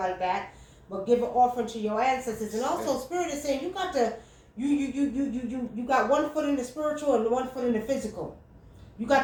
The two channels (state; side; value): identical; both; correlation 1.00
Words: that. But give an offering to your ancestors. And also, Spirit is saying you got to, you got one foot in the spiritual and one foot in the physical. You